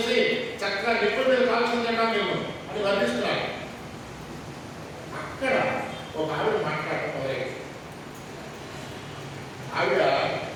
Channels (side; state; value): both; identical; correlation 1.00